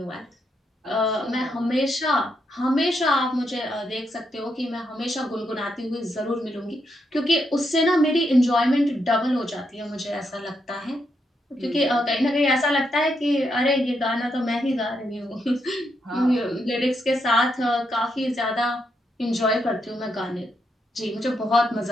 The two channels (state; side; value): normal; both; correlation 0.80